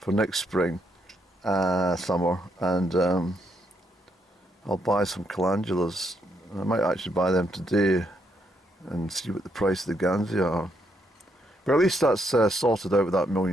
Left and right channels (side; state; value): both; normal; correlation 0.76